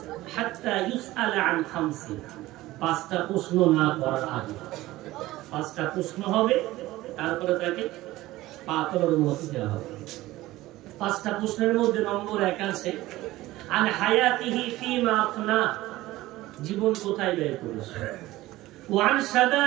হাত্তা ইউসআলা আন খামসি, 5টা প্রশ্ন না করার আগে। 5টা প্রশ্ন হবে, তারপরে তাকে পা তোলার অনুমতি দেওয়া হবে। 5টা প্রশ্নের মধ্যে নম্বর 1 আছে, আন হায়াতিহি ফিমা আফনা, জীবন কোথায় ব্যয় করেছে, ওয়া আন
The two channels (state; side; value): quieter; left; 17.3 dB